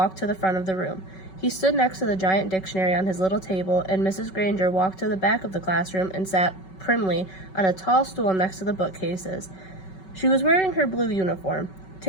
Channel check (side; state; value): right; late; 5.3 ms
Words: to the front of the room. He stood next to the giant dictionary on his little table, and Mrs. Granger walked to the back of the classroom and sat primly on a tall stool next to the bookcases. She was wearing her blue uniform.